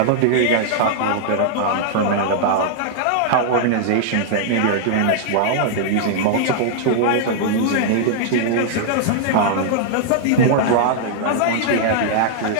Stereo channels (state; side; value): different; both; correlation -0.01